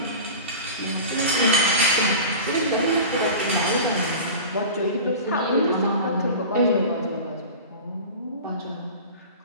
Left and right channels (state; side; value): inverted; both; correlation -0.33